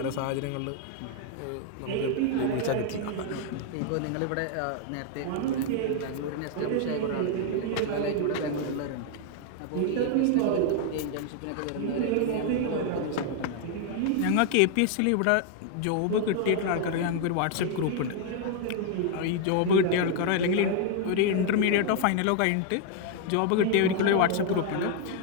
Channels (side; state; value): both; different; correlation 0.00